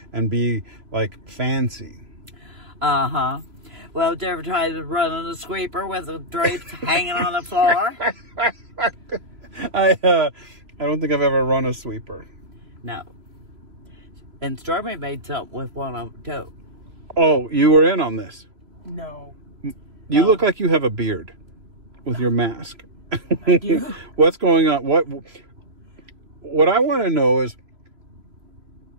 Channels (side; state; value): left; late; 3.0 ms